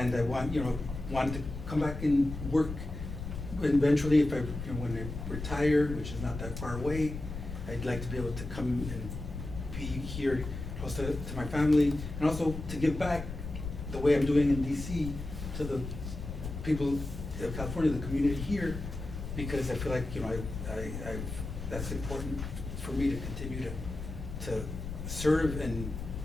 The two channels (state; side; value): noise; left; rumble, 8 dB below the sound